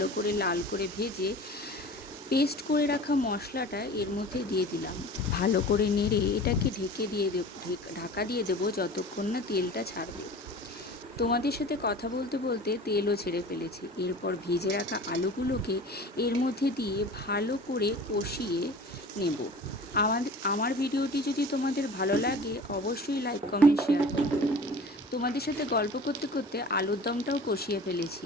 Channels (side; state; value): both; normal; correlation 0.40